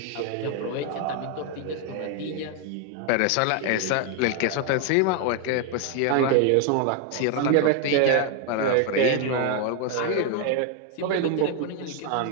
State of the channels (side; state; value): both; different; correlation 0.00